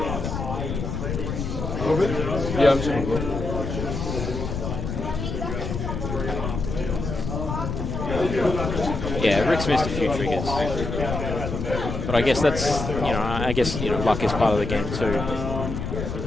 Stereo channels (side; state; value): left; noise; rumble, 4 dB below the sound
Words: Yeah, I'm saying. Yeah, Rick's missed a few triggers. But I guess that's, luck is part of the game too.